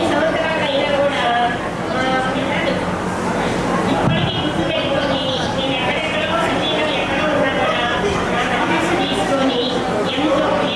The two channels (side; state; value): both; identical; correlation 1.00